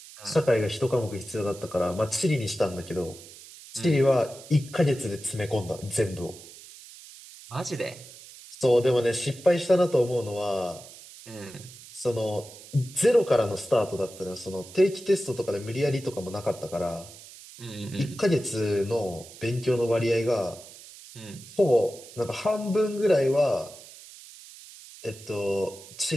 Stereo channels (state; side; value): noise; right; hiss, 18 dB below the sound